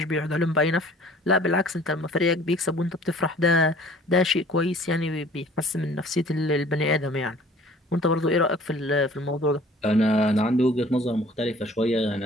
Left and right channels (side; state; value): both; normal; correlation 0.51